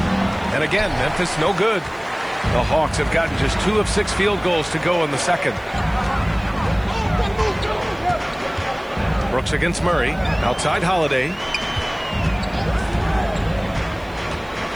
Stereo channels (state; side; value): noise; right; hiss, 30 dB below the sound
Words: And again, Memphis no good. The Hawks have gotten just 2 of 6 field goals to go in the second. Brooks against Murray. Outside Holiday.